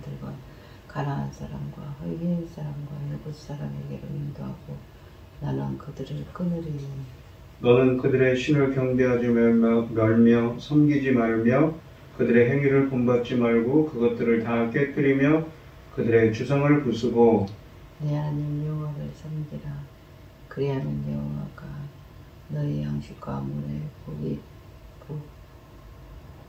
가나안 사람과 히브리 사람과 예붓 사람에게로 인도하고 나는 그들을 끊으리니 너는 그들의 신을 경배하지 말며 섬기지 말며 그들의 행위를 본받지 말고 그것들을 다 깨뜨리며 그들의 주성을 부수고 내 하나님 여호와를 섬기라. 그리하면 여호와가 너희 양식과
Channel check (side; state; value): both; identical; correlation 1.00